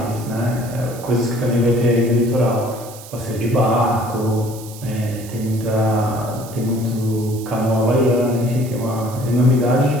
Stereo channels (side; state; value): right; noise; hiss, 17 dB below the sound